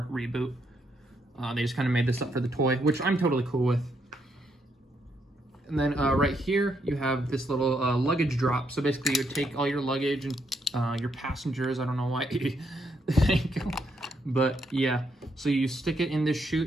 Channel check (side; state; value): both; normal; correlation 0.76